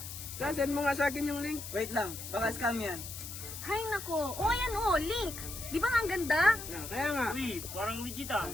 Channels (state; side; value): noise; left; hiss, 9 dB below the sound